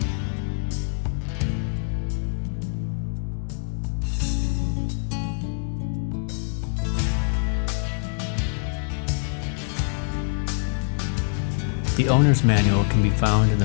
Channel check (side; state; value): right; silent; 62 dB below the other